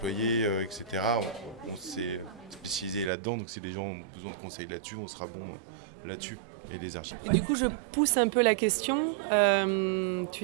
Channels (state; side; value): drops out; left; at 3.1 s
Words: etc. On s'est spécialisé là-dedans, donc si les gens ont besoin de conseils là-dessus, on sera bon là-dessus. Et les architectes. Et du coup, je pousse un peu la question.